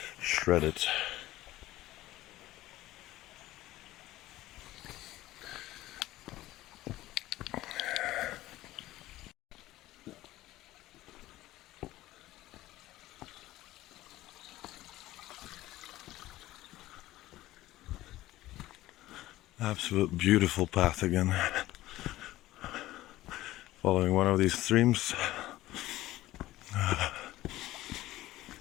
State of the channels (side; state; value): right; quieter; 16.2 dB